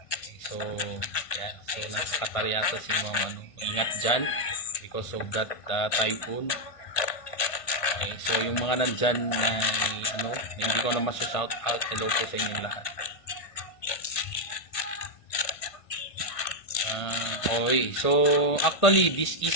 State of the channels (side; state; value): right; late; 1.5 ms